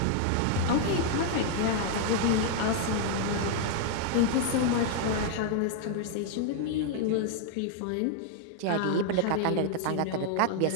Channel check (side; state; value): both; different; correlation 0.00